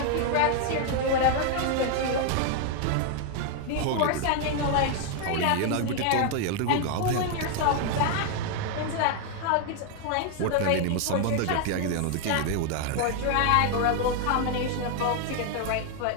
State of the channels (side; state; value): both; different; correlation 0.00